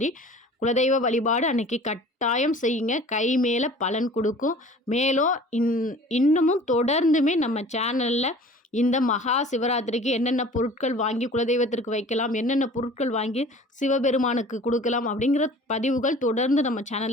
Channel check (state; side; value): normal; both; correlation 0.45